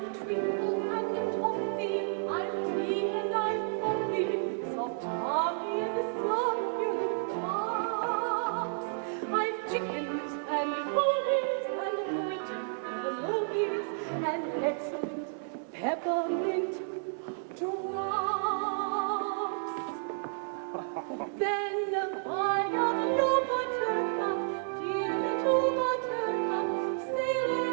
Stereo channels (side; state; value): left; silent; digital silence